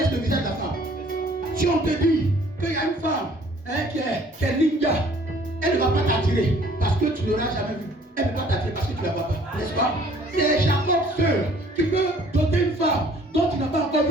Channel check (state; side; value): normal; both; correlation 0.56